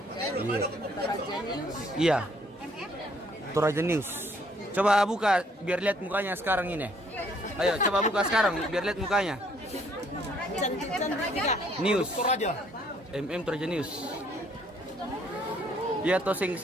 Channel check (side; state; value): both; normal; correlation 0.64